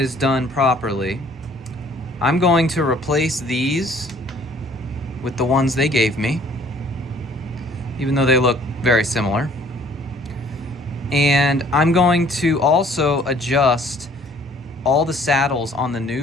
done properly, I'm going to replace these with the ones they gave me, even though they look very similar. And I'm going to also adjust all the saddles on the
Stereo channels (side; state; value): both; normal; correlation 0.57